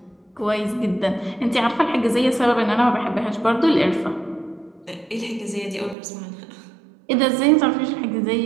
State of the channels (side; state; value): left; drops out; at 6.0 s